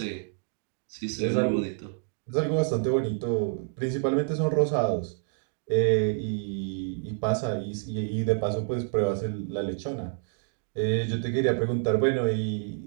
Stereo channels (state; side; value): silent; left; 59 dB below the other